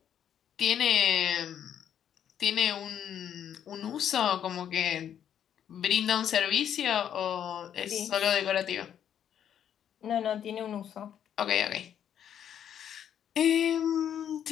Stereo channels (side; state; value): right; quieter; 9.4 dB